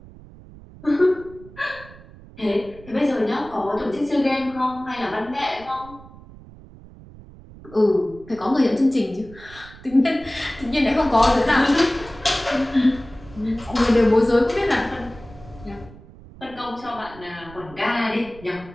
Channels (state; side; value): noise; right; rumble, 20 dB below the sound